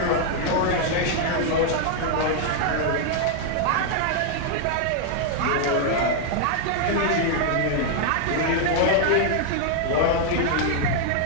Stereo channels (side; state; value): both; different; correlation 0.00